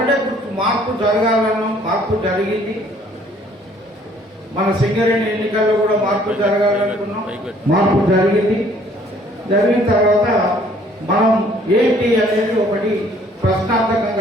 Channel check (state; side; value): normal; both; correlation 0.59